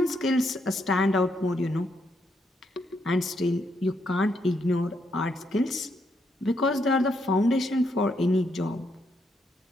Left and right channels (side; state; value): both; normal; correlation 0.77